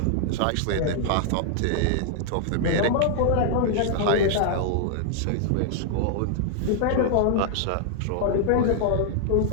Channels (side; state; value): both; different; correlation -0.01